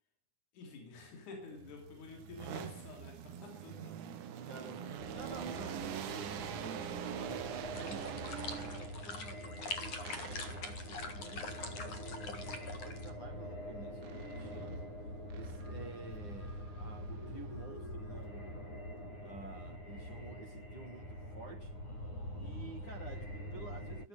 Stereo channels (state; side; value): late; right; 9.8 ms